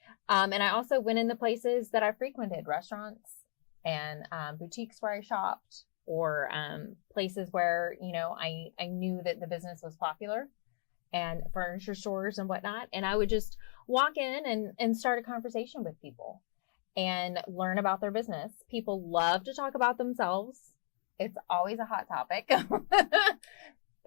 And I also went in the places that I frequented, restaurants and boutiques where I shopped, or places where, you know, I knew that the business was popular, and furniture stores and whatnot. And I would just walk in and start a conversation with people and learn about their business. People love to talk about themselves. It's always a hot topic.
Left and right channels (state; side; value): silent; right; 54 dB below the other